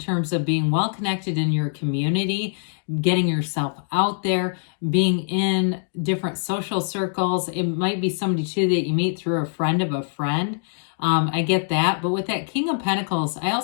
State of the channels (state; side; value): silent; right; digital silence